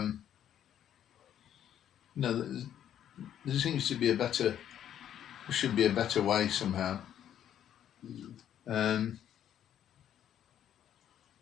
know, there seems to be should be a better way somehow.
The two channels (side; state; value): right; quieter; 10.3 dB